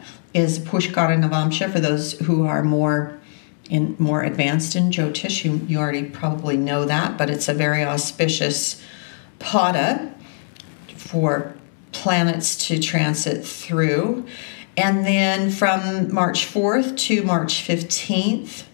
is Pushkara Navamsha. For those who are more advanced in Jyotish, you already probably know that, but it's a very auspicious pada for planets to transit through. And then from March 4th to March 15th,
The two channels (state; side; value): silent; right; digital silence